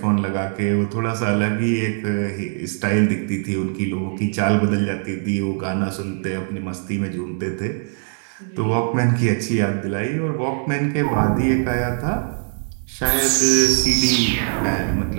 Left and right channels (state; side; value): silent; left; 60 dB below the other